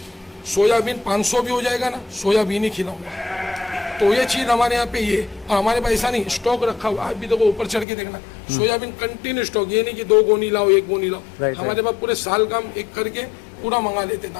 सोयाबीन 500 भी हो जाएगा ना, सोयाबीन ही खिलाऊंगा। तो ये चीज़ हमारे यहाँ पे ये, और हमारे पास ऐसा नहीं स्टॉक रखा हुआ। आप भी देखो ऊपर चढ़ के देखना, सोयाबीन कंटिन्यू स्टॉक, ये नहीं कि 2 गोनी लाओ 1 गोनी लाओ। हमारे पास पूरे साल का हम एक करके पूरा मंगा लेते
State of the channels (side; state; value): right; drops out; at 7.9 s